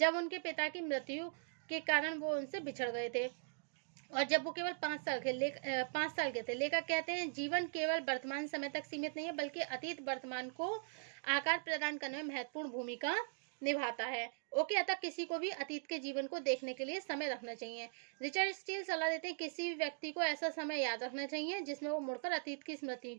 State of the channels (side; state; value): left; silent; digital silence